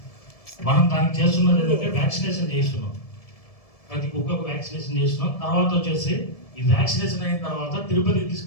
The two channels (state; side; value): late; right; 1.7 ms